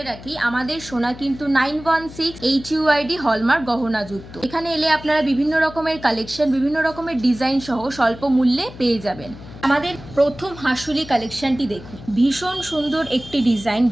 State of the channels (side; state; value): left; noise; hum, 16 dB below the sound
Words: রাখি, আমাদের সোনা কিন্তু 916 HUID হলমার্ক গহনাযুক্ত। এখানে এলে আপনারা বিভিন্ন রকমের কালেকশন, বিভিন্ন রকমের ডিজাইন সহ স্বল্প মূল্যে পেয়ে যাবেন। আমাদের প্রথম হাসুলি কালেকশনটি দেখুন, ভীষণ সুন্দর একটি ডিজাইন,